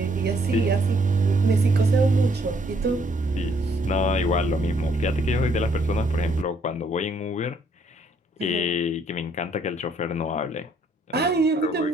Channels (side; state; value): both; normal; correlation 0.67